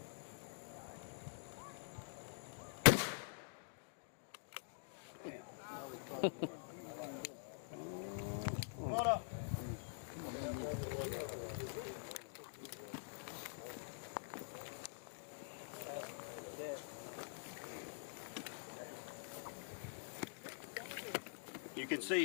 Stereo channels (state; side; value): silent; right; digital silence